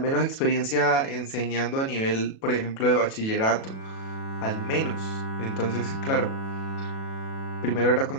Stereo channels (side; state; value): right; late; 37 ms